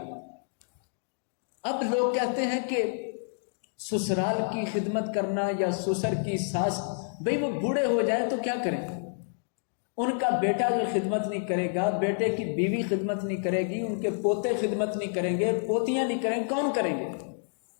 اب لوگ کہتے ہیں کہ سسرال کی خدمت کرنا یا سسر کی ساس، بھئی وہ بوڑھے ہو جائیں تو کیا کریں؟ ان کا بیٹا جو خدمت نہیں کرے گا، بیٹے کی بیوی خدمت نہیں کرے گی، ان کے پوتے خدمت نہیں کریں گے، پوتیاں نہیں کریں گے، کون کریں گے؟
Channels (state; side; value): silent; right; digital silence